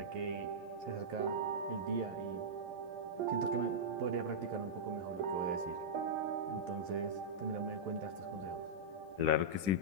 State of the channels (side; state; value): left; late; 10 ms